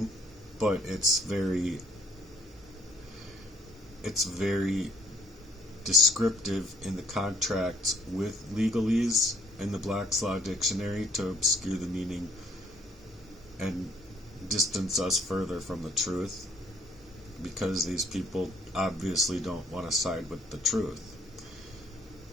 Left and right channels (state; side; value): normal; both; correlation 0.63